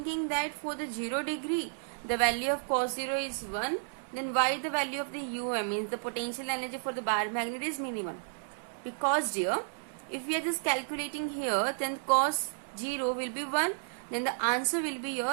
that for the 0 degree the value of cos 0 is 1, then why the value of the means the potential energy for the bar magnet is minimum? Because dear, if we are just calculating here, then cos 0 will be 1, then the answer will be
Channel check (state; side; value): silent; left; 56 dB below the other